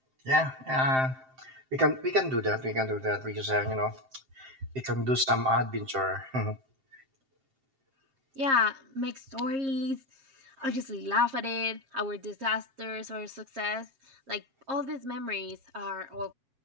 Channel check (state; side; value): late; left; 7.6 ms